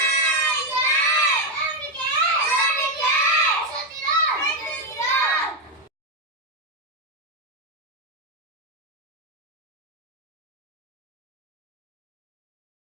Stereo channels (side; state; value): both; normal; correlation 0.05